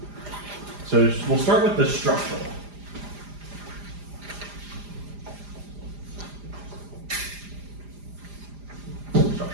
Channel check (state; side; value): late; left; 4.9 ms